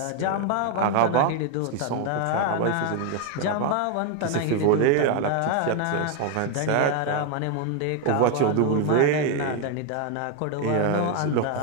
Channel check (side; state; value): both; different; correlation 0.01